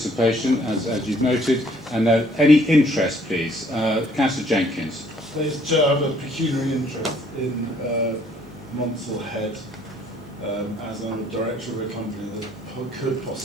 as you've noted, and any interest, please. Councillor Jenkins. Please, Chair, I have a pecuniary interest in Monsell Head as I'm a director of a company that could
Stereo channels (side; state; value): both; normal; correlation 0.62